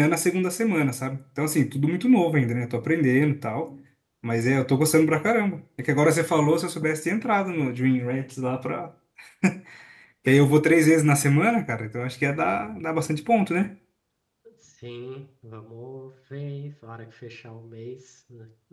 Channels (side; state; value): both; identical; correlation 1.00